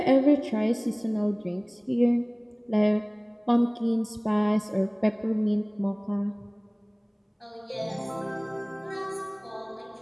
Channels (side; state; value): both; identical; correlation 1.00